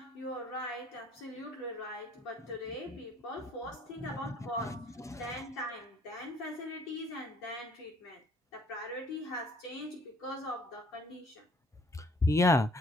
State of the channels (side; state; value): both; normal; correlation 0.59